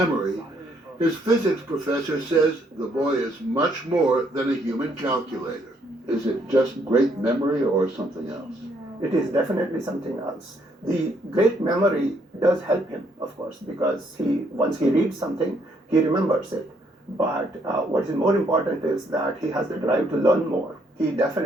his physics professor says the boy is much more than a human calculator. Is it just great memory or something else? It is definitely something else. The great memory does help him, of course, because once he reads something, he remembers it. But what is more important is that he has the drive to learn more. He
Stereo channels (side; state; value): both; normal; correlation 0.70